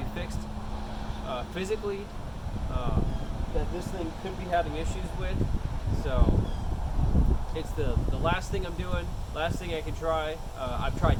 fixed physically that this thing could be having issues with. So it's the last thing I'm doing, last thing I can try. I've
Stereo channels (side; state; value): both; identical; correlation 1.00